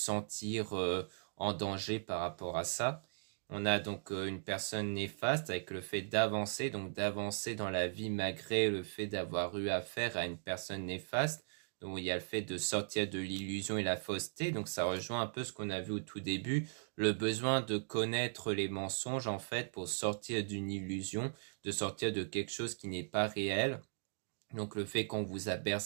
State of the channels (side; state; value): left; silent; digital silence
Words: en danger par rapport à ça. On a donc une personne néfaste avec le fait d'avancer, donc d'avancer dans la vie malgré le fait d'avoir eu affaire à une personne néfaste. Donc il y a le fait de sortir de l'illusion et la fausseté. Donc ça rejoint un peu ce qu'on a vu au tout début, le besoin de connaître les mensonges en fait pour sortir d'une illusion, de sortir de quelque chose qui n'est pas réel. Donc le fait qu'on vous a